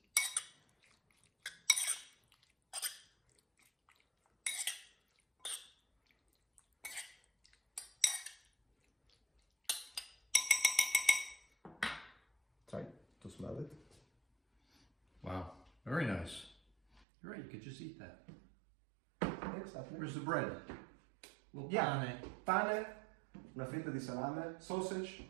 Try to smell it. Wow, very nice. You're right, you could just eat that. Exactly. Where's the bread? Little Yeah. pane. Pane, una fetta di salame, sausage,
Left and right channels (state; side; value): drops out; left; at 17.1 s